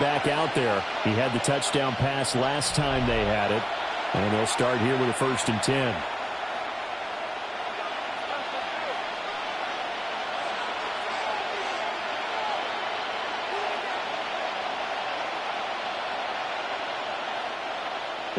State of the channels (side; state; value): both; identical; correlation 1.00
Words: out there. He had the touchdown pass last time they had it. And they'll start here with a 1st and 10.